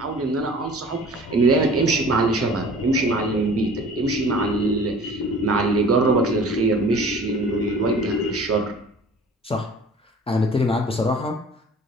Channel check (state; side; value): normal; both; correlation 0.46